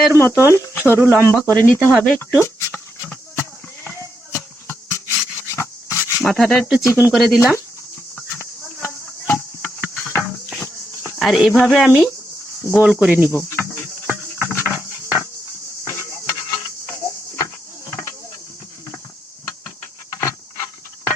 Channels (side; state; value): both; normal; correlation 0.81